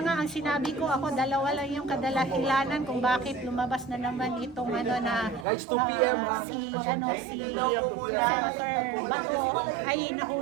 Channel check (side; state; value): left; drops out; at 5.5 s